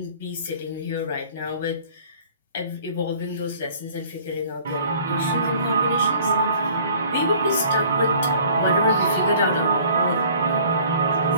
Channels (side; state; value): both; inverted; correlation -0.53